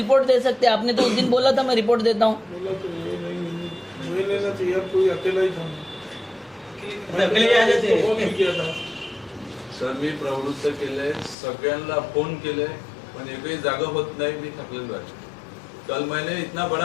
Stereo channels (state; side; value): drops out; right; at 11.4 s